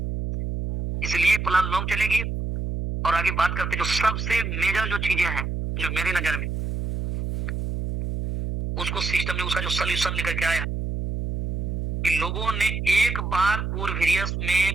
इसलिए प्लान लॉन्ग चलेगी। और आगे बात करते जो सबसे मेजर जो चीजें हैं, जो मेरी नजर में उसको सिस्टम ने उसका जो सोल्यूशन लेकर के आया कि लोगों ने एक बार कोरवेरियस में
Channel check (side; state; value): right; noise; hum, 3 dB below the sound